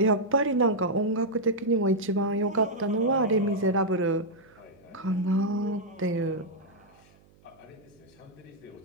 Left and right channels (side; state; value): right; noise; hum, 29 dB below the sound